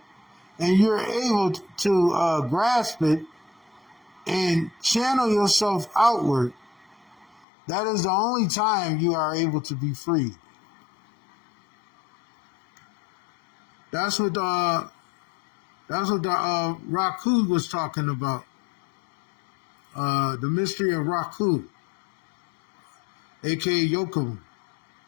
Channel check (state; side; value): drops out; right; at 7.5 s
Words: and you're able to grasp it and channel yourself outward, that is the only time you are able to be free. That's what the Raku was talking about. The mystery of Raku, aka Yokum,